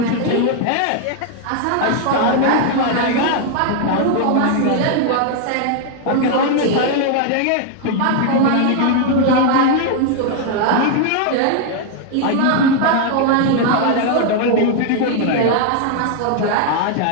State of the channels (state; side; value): different; both; correlation 0.00